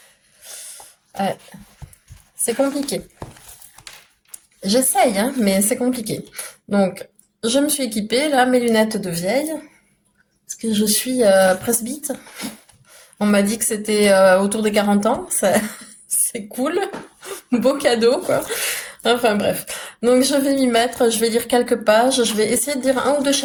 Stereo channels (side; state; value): both; identical; correlation 1.00